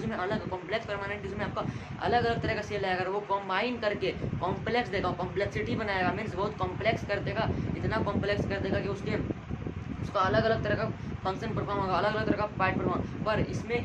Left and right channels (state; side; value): identical; both; correlation 1.00